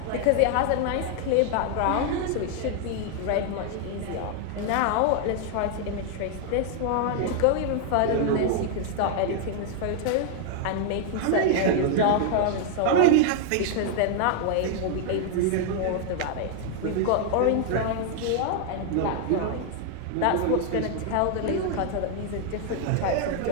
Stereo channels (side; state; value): both; different; correlation 0.00